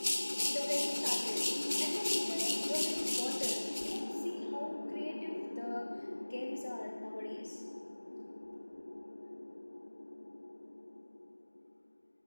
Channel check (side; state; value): both; inverted; correlation -1.00